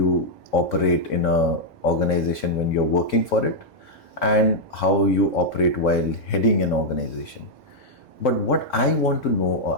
operate in an organization when you're working for it and how you operate while heading an organization. But what I want to know,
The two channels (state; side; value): normal; both; correlation -0.04